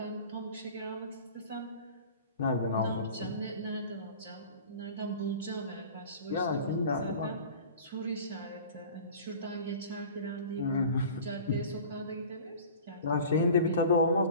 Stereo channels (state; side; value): inverted; both; correlation -0.41